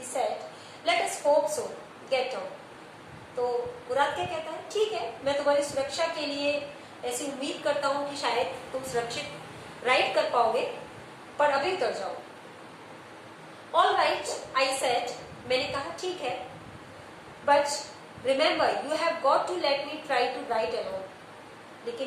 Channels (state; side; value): identical; both; correlation 1.00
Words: said, let us hope so. Get down. तो मुराद क्या कहता है, ठीक है, मैं तुम्हारी सुरक्षा के लिए ऐसी उम्मीद करता हूँ कि शायद तुम सुरक्षित राइड कर पाओगे, पर अभी उतर जाओ। ऑल राइट, आई सेड, मैंने कहा ठीक है, but remember you have got to let me try to ride alone.